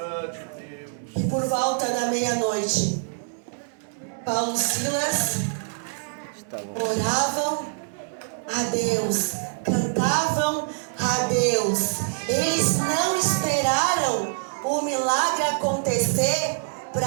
que por volta da meia-noite, Paulo e Silas Estavam. oravam a Deus, cantavam a Deus. Eles não esperaram o milagre acontecer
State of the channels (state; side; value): silent; left; digital silence